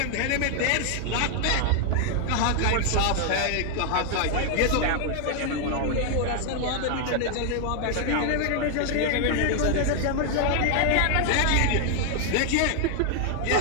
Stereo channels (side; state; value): both; different; correlation 0.00